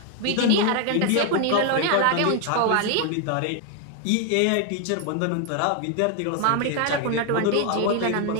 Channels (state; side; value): different; both; correlation 0.01